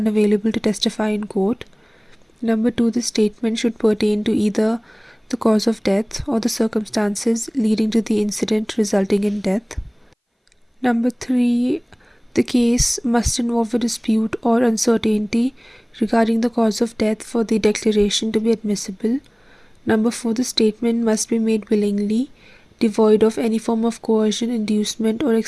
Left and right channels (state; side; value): identical; both; correlation 1.00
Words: to testify in court. Number 2, the statement should pertain to either the cause of death or the circumstances leading to the incident resulting in death. Number 3, the case must involve a dispute or uncertainty regarding the cause of death for the declaration to be admissible. Number 4, the statement must be made willingly, devoid of any form of coercion, inducement, or